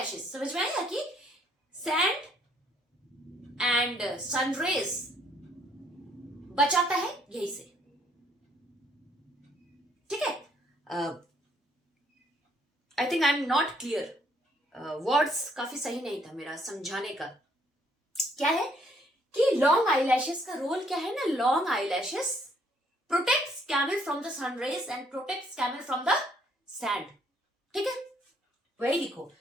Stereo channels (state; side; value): normal; both; correlation 0.67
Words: समझ में आया कि सैंड एंड सनरेज बचाता है यही से, ठीक है। I think I am not clear, words काफी सही नहीं था मेरा समझाने का। क्या है कि लॉन्ग आईलैशेस का रोल क्या है ना, long eyelashes protects camel from the sun rays and protects camel from the sand, ठीक है। वही लिखो